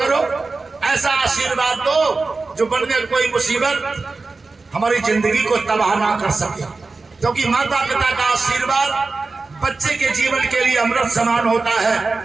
ऐसा आशीर्वाद दो जो वन में कोई मुसीबत हमारी जिंदगी को तबाह ना कर सके, क्योंकि माता पिता का आशीर्वाद बच्चे के जीवन के लिए अमृत समान होता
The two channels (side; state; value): left; quieter; 3.8 dB